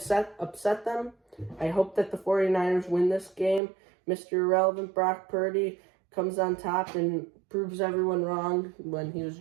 them. I hope that the 49ers win this game. Mr. Irrelevant Brock Purdy comes on top and proves everyone wrong when he was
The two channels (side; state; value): left; drops out; at 3.6 s